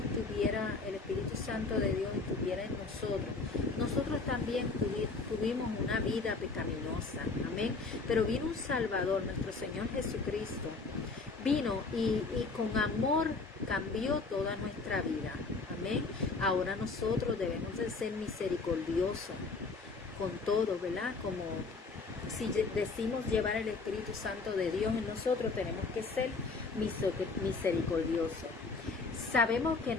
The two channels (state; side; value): quieter; right; 4.0 dB